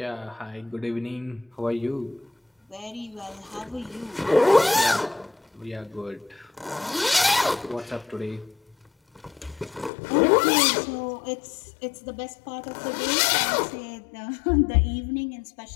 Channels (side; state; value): right; drops out; at 9.9 s